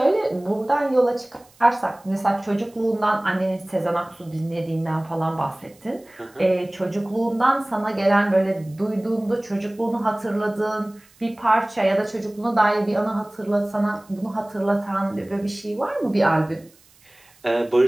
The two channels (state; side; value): noise; right; hiss, 30 dB below the sound